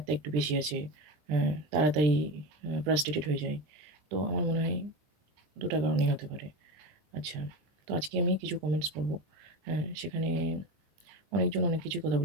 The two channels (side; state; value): left; late; 20 ms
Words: একটু বেশি আছে, তাড়াতাড়ি ফ্রাস্ট্রেটেড হয়ে যায়। তো আমার মনে হয় ২ টা কারণেই হতে পারে। আচ্ছা, তো আজকে আমি কিছু কমেন্টস পড়ব। সেখানে অনেকজন অনেক কিছুই কথা